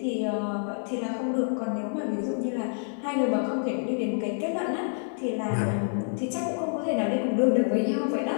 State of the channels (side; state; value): right; silent; 60 dB below the other